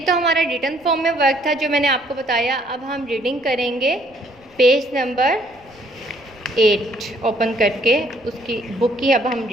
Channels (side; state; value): left; noise; rumble, 29 dB below the sound